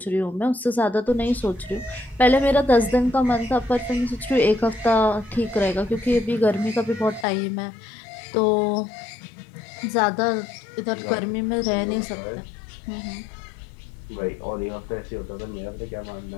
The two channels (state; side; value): drops out; right; at 7.2 s